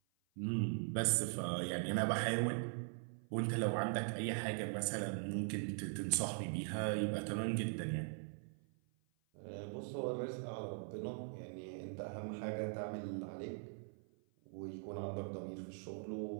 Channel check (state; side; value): silent; left; 50 dB below the other